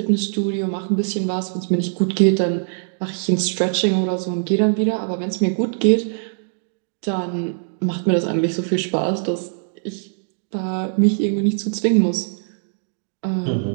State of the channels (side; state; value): left; silent; digital silence